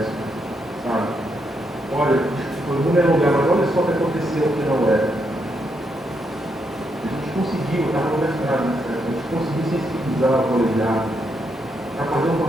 sabe? Olha, foi um lugar, mas olha só o que aconteceu aqui na UERJ. A gente conseguiu, estava no mestrado, né? A gente conseguiu sensibilizar o colegiado para fazer um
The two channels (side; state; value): both; normal; correlation 0.79